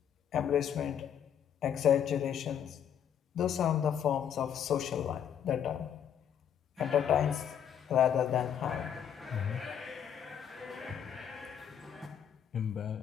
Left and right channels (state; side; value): quieter; right; 8.8 dB